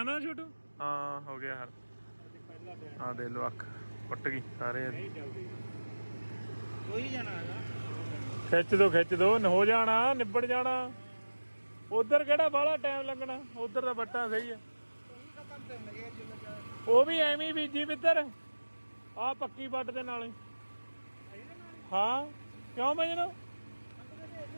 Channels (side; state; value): both; inverted; correlation -1.00